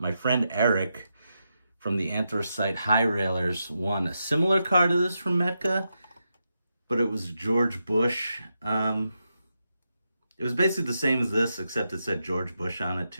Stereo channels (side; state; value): both; inverted; correlation -0.86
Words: friend Eric from the Anthracite High Railers won a similar car to this from Metka, but it was George Bush. It was basically the same as this, except it said George Bush on it